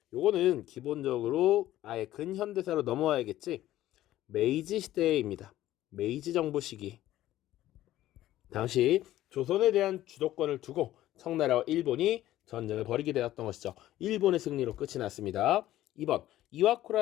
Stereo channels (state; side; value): quieter; right; 14.2 dB